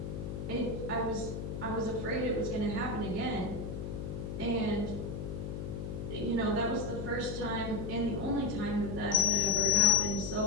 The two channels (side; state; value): left; noise; hum, 5 dB below the sound